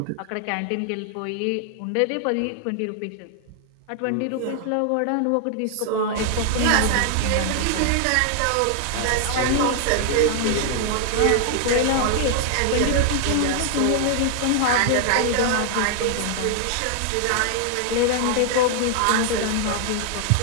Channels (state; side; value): different; both; correlation 0.00